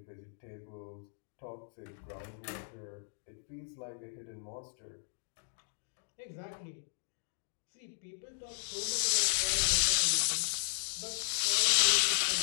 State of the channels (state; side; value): silent; right; digital silence